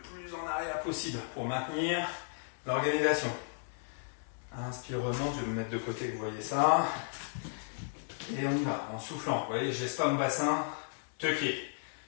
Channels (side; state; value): right; silent; digital silence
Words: en arrière possible pour maintenir l'organisation. Inspire, remonte, je vais me mettre de côté que vous voyez ça. Et on y va, en soufflant. Vous voyez, je laisse pas mon bassin tucké.